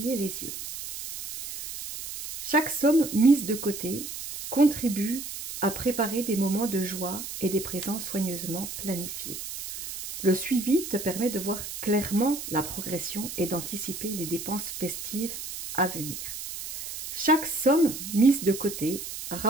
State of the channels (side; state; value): right; noise; hiss, 8 dB below the sound